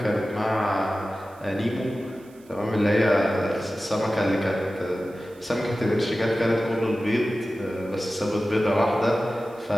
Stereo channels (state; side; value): noise; right; hiss, 29 dB below the sound